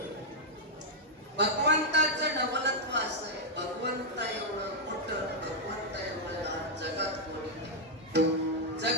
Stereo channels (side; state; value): both; normal; correlation -0.04